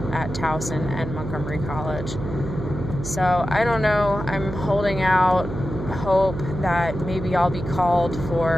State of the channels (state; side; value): noise; right; hum, 7 dB below the sound